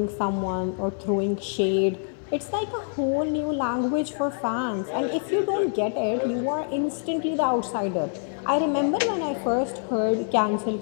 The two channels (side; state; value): right; silent; 61 dB below the other